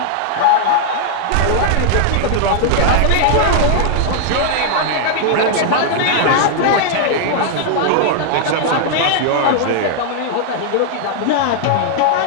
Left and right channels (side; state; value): both; different; correlation 0.00